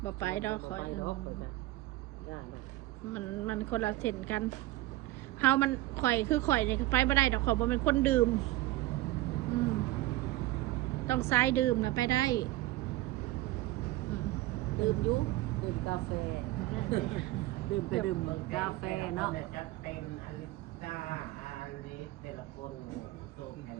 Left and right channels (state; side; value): quieter; left; 17.2 dB